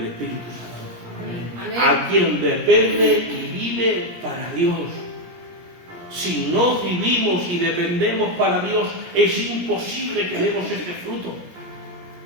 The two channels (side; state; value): left; late; 17 ms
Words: Espíritu Santo. Amén. A quien depende y vive para Dios. Si no vivimos y dependemos para Dios, es imposible que demos este fruto.